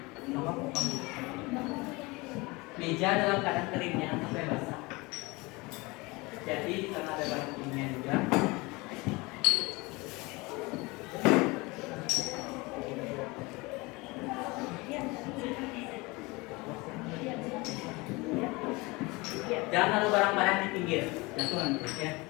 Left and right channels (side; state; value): right; quieter; 24.3 dB